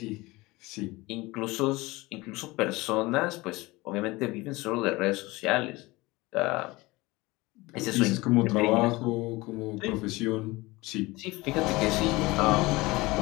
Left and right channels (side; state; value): right; quieter; 21.6 dB